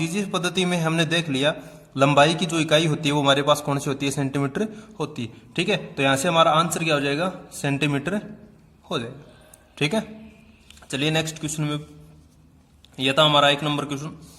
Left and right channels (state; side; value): identical; both; correlation 1.00